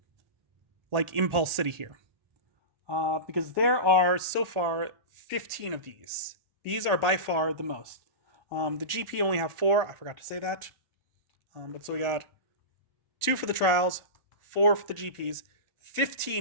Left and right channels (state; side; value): late; left; 1.4 ms